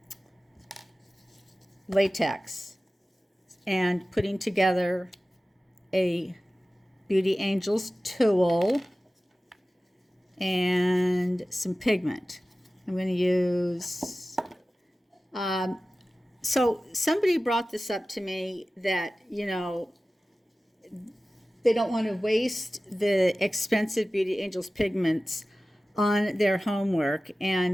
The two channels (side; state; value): both; normal; correlation 0.96